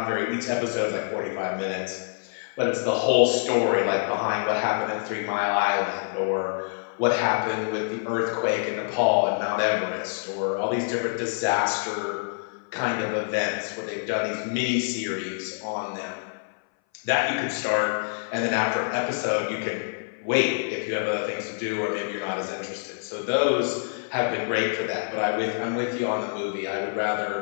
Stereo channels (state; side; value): silent; right; 59 dB below the other